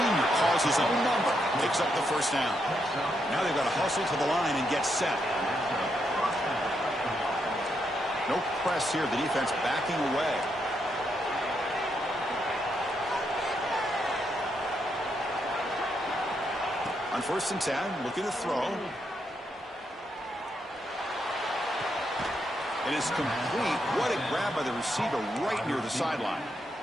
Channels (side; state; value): both; normal; correlation 0.80